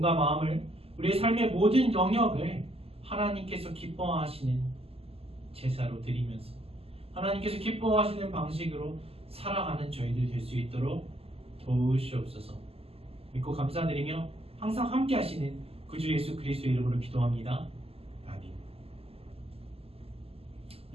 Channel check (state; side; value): late; left; 0.29 ms